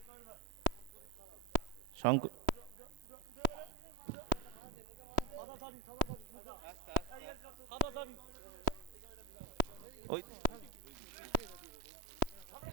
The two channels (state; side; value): late; left; 3.1 ms